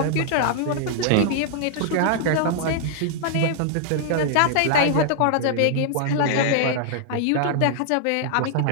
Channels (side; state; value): both; different; correlation -0.01